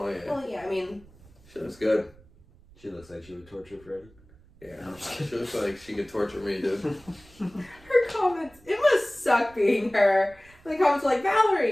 yeah, Well, yeah, I mean, she looks good. She looks like she would torture Freddie. Yeah, she looks like she could torture me, dude. her comments, it must suck being her. The comments are like,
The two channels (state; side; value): noise; right; rumble, 26 dB below the sound